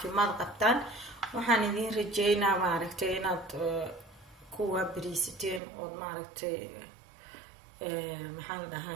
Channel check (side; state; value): left; drops out; at 5.6 s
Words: قبطان وحان إذين رجينا ماركتي إناد كوا بريستين أو ماركتي محال